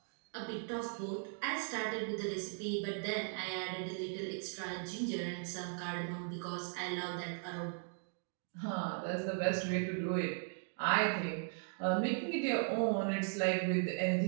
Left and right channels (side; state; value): left; silent; 52 dB below the other